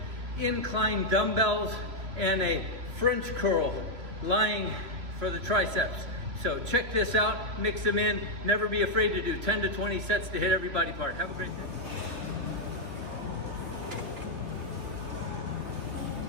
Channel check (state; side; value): late; left; 3.0 ms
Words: incline dumbbells, and a French curl lying for the triceps. So check this out, mix them in, never be afraid to do 10 to 20 sets to hit every body part. Have a great day.